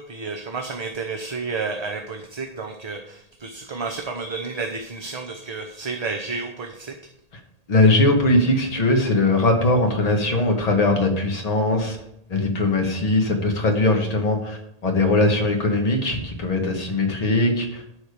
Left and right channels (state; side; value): late; right; 1.8 ms